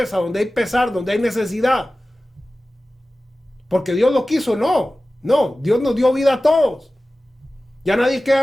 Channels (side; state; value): both; normal; correlation 0.96